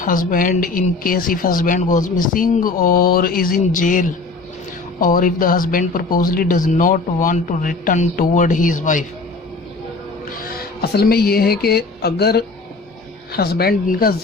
in case if husband goes missing or is in jail or if the husband purposely does not want to return toward his wife۔ اصل میں یہ ہے کہ اگر husband ان کا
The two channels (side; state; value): right; quieter; 3.7 dB